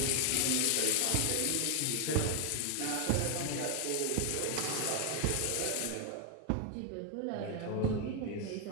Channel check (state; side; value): different; both; correlation 0.00